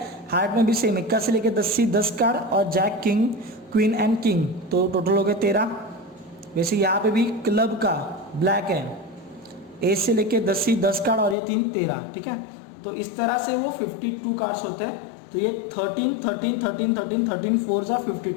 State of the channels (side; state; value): right; drops out; at 11.4 s